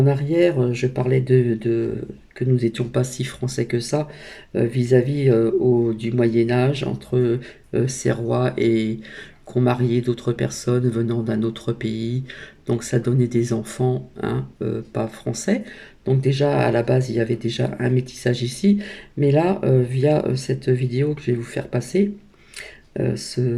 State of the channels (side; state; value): both; identical; correlation 1.00